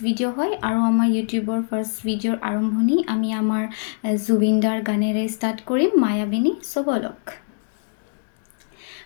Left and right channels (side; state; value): right; silent; digital silence